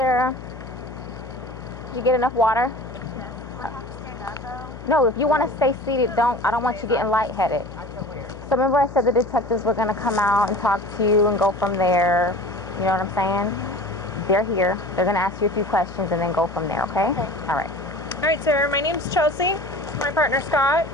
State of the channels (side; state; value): left; noise; hum, 14 dB below the sound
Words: Did you get enough water? Do I have to stand up, though? No, if you want to stay seated, I don't want you getting lightheaded. I feel weird. So remember I said the detectives were going to come out and talk to you and go from there. You know what I'm saying? They're here. They're going to ask you a few questions and then go from there, okay? Okay. All right. All right, Sarah, my name's Chelsea. My partner, Scott.